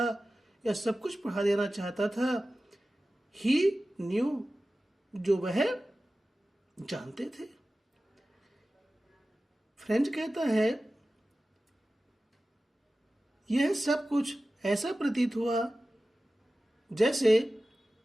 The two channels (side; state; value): both; normal; correlation 0.95